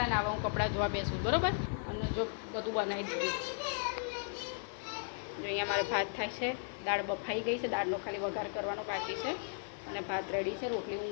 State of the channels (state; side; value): silent; right; 54 dB below the other